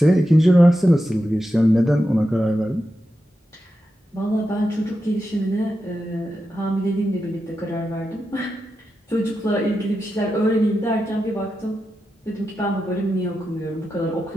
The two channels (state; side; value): normal; both; correlation 0.89